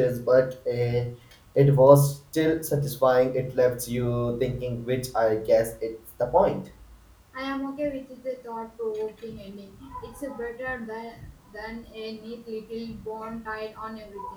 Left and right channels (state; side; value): identical; both; correlation 1.00